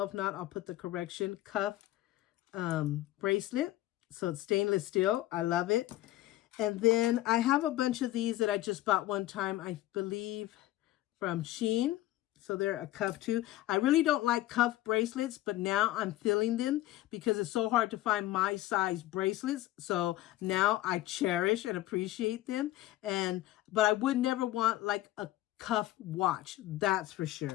If not, I'll put the correction, cuff bracelet. So it's stainless steel. I love it. And then I have a bunch of these that I just bought one time, I believe, from Shein. So they're a cuff too. I really don't like cuff bracelets, but now I'm feeling them because it's so hard to find my size bracelets. So now I cherish and appreciate them. But I would never want like a cuff watch, that's for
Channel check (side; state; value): right; quieter; 15.6 dB